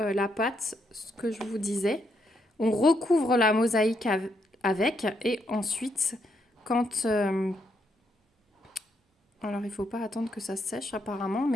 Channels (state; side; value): normal; both; correlation 0.77